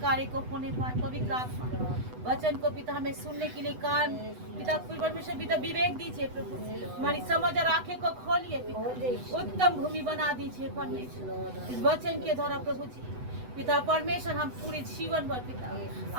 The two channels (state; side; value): late; left; 8.0 ms